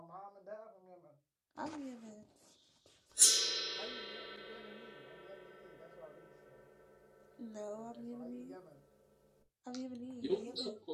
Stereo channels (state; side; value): identical; both; correlation 1.00